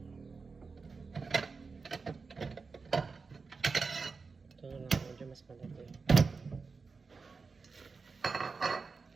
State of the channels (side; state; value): left; quieter; 4.6 dB